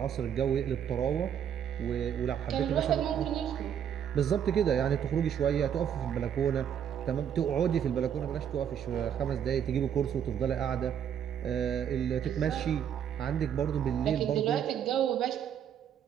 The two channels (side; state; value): left; quieter; 8.9 dB